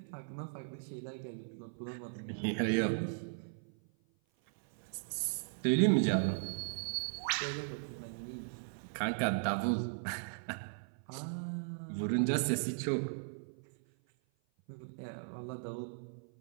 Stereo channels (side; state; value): left; silent; 53 dB below the other